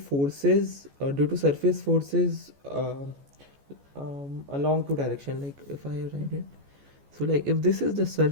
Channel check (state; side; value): late; left; 14 ms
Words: due to surface forces along two direction. Like if I write it, so like if this is the